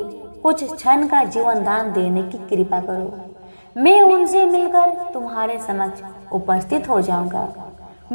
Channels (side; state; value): both; inverted; correlation -1.00